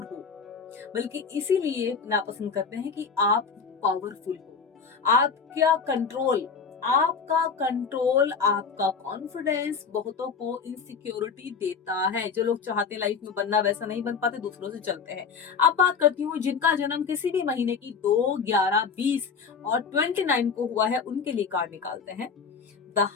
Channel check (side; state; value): right; quieter; 5.7 dB